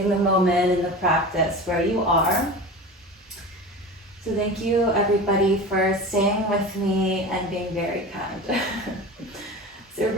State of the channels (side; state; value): both; normal; correlation 0.32